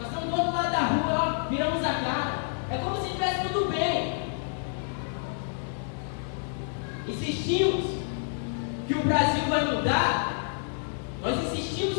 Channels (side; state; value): right; silent; digital silence